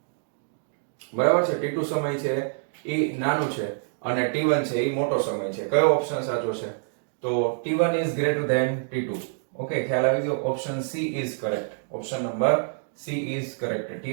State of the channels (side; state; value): left; silent; digital silence